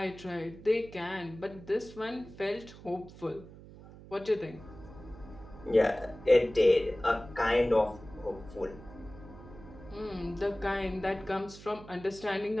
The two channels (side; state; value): right; noise; hum, 17 dB below the sound